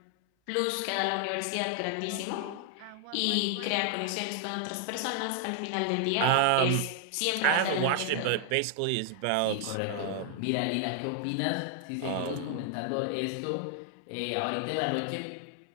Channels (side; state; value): both; different; correlation 0.00